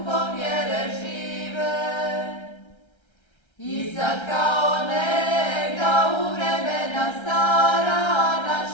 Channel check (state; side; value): late; right; 1.3 ms